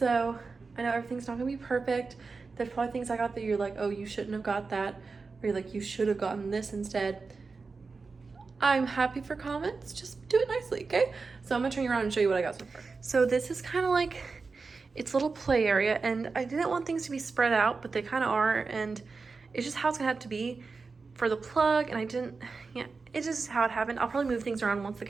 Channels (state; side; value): quieter; left; 4.4 dB